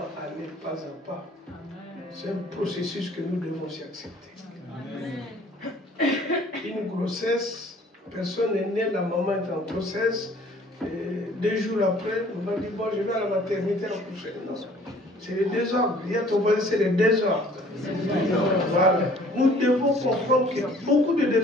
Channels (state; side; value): normal; both; correlation 0.54